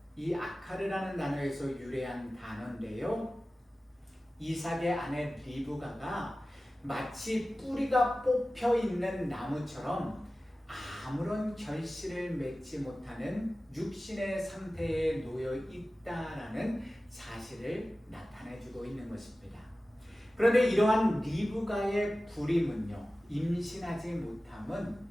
이 아카르라는 단어에서 유래한 단어인데요, 이삭의 아내 리브가가 마치 뿌리가 뽑혀 있는 나무처럼 아무런 결실을 맺지 못하는 육신의 상태에 놓여 있다라는 사실을 나타내주고 있는 것입니다. 그런데 이러한 리브가의 불임은요, 임신하지 못함은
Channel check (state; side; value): normal; both; correlation 0.96